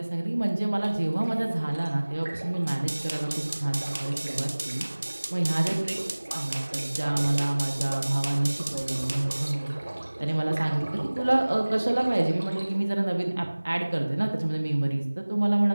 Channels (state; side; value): inverted; both; correlation -1.00